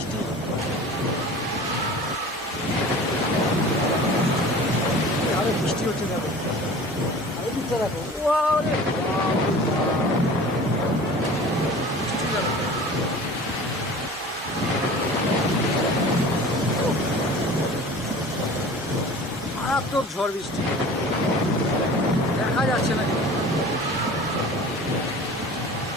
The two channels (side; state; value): both; normal; correlation 0.41